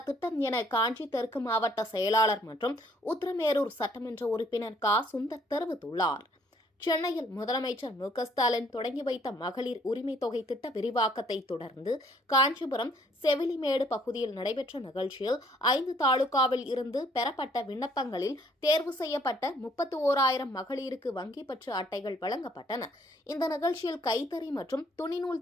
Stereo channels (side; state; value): both; normal; correlation 0.63